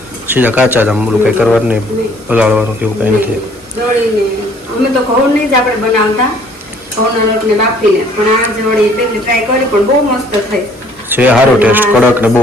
સીધા કાચા જ આમ બોલું કંઈ કરવાનું નહીં, પલાળવાનું કેવું કંઈ નથી. દળીને અમે તો ઘઉંની જ આપણે બનાવતા, ઘઉંના લોટને બાફીને, પણ આ જ વળી પહેલી ટ્રાય કરી પણ બહુ મસ્ત થઈ છે. સારો ટેસ્ટ, કડક ને બહુ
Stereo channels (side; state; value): both; normal; correlation 0.59